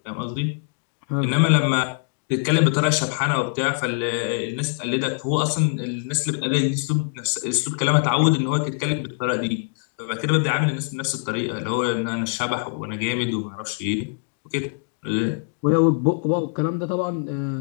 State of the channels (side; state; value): right; silent; digital silence